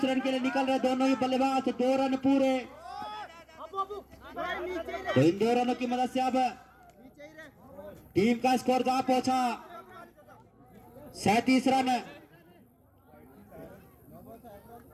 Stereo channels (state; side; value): identical; both; correlation 1.00